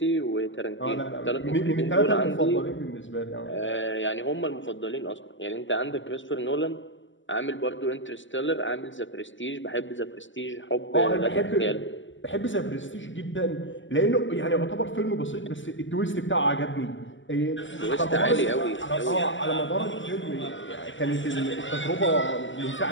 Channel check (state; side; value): late; right; 0.55 ms